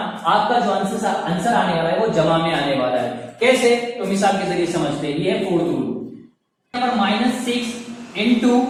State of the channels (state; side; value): identical; both; correlation 1.00